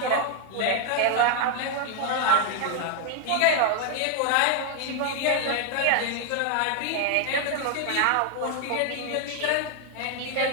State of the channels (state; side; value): different; both; correlation 0.00